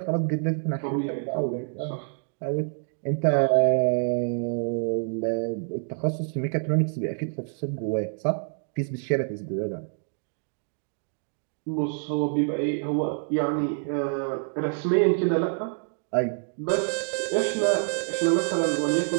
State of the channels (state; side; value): silent; left; digital silence